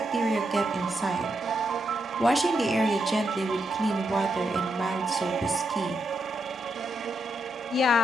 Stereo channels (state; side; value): normal; both; correlation 0.82